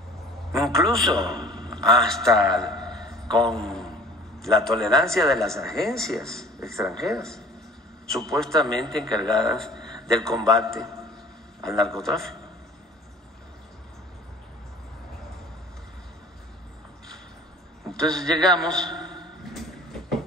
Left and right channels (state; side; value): normal; both; correlation 0.47